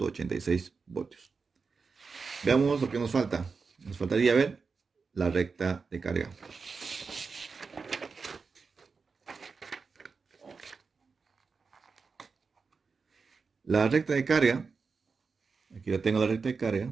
voltios. Veamos lo que nos falta. Nos faltaría ver la recta de carga. La recta de carga, aquí la tengo la recta de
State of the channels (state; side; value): quieter; left; 4.9 dB